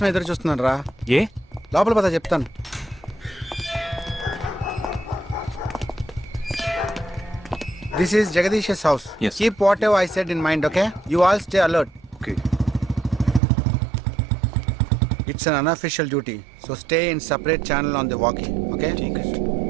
ఎదురు చూస్తున్నాను రా. ఏ లోపల పద చెప్తాను. This is Jagadish house. Yes. Keep what ever I said in mind. Okay, you all stay alert. Okay. It's an unofficial duty, so stay in separate channel on the walkie. Okay,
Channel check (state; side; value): drops out; left; at 13.4 s